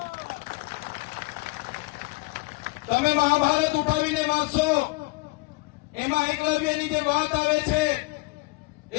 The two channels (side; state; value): right; quieter; 25.2 dB